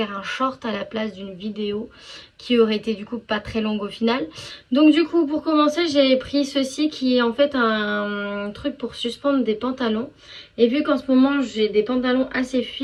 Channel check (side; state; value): both; identical; correlation 1.00